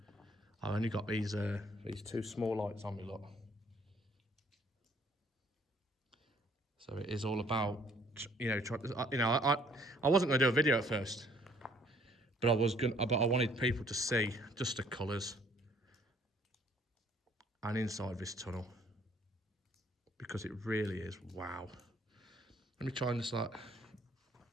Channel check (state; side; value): normal; both; correlation 0.62